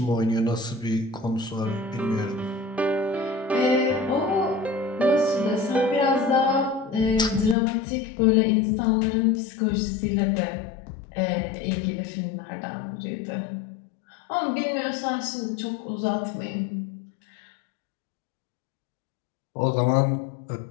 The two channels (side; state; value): right; drops out; at 7.6 s